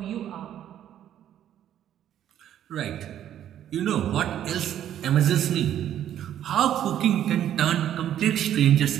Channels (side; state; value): left; quieter; 10.9 dB